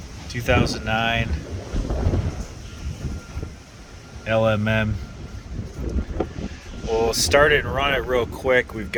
2009 LMM. We'll start it and run it real quick. We've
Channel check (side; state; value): both; identical; correlation 1.00